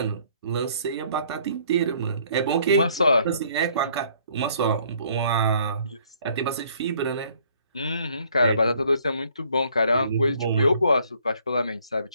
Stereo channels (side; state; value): both; inverted; correlation -0.62